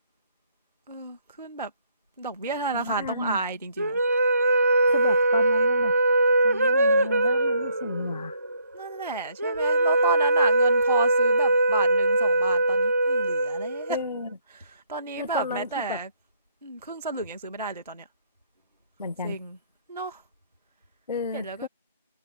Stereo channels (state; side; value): inverted; both; correlation -0.69